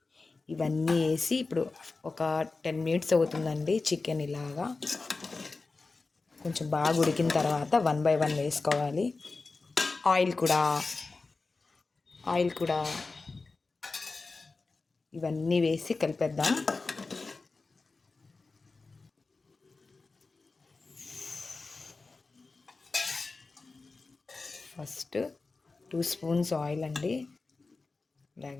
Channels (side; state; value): right; quieter; 3.8 dB